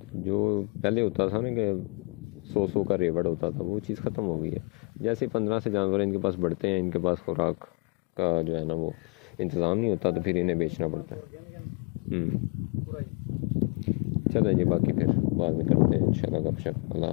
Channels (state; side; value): quieter; right; 33.6 dB